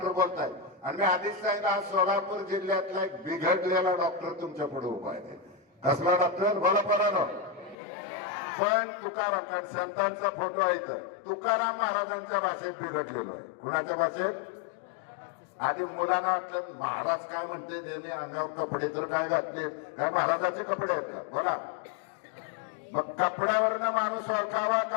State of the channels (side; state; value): right; drops out; at 7.8 s